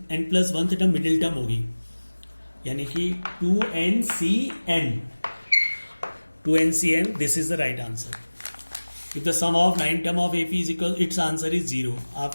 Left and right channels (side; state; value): both; inverted; correlation -1.00